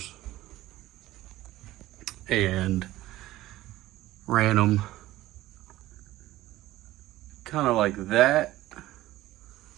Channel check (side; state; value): left; quieter; 16.1 dB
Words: and ran them kind of like that,